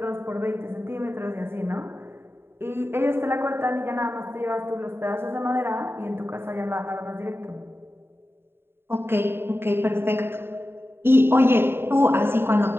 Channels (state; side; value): late; left; 0.11 ms